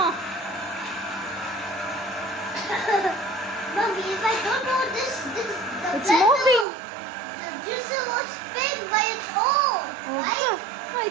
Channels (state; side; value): drops out; left; at 6.7 s